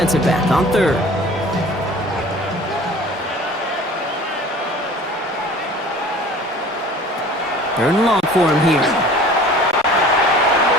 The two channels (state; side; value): normal; both; correlation 0.45